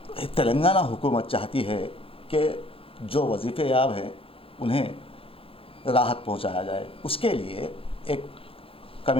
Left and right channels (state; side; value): late; right; 0.27 ms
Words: तेलंगाना हुकूमत चाहती है कि जो वजीफ़े याब हैं उन्हें राहत पहुंचाया जाए। उसके लिए एक